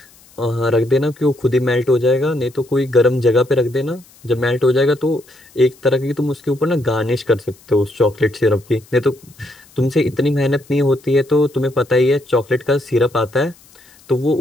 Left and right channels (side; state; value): left; noise; hiss, 27 dB below the sound